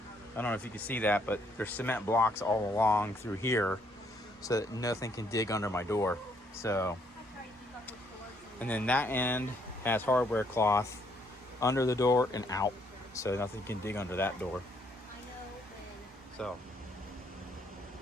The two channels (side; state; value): both; normal; correlation 0.70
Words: I don't know if you can see that, but there's cement blocks all along through here so that nothing can dig under my door. So, and then that end has hardware cloth under the door and out, so nothing can dig under that door. So,